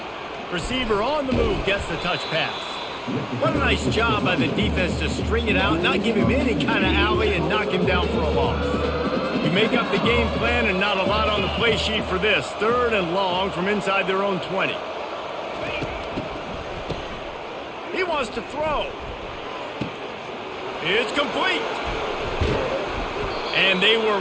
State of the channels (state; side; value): identical; both; correlation 1.00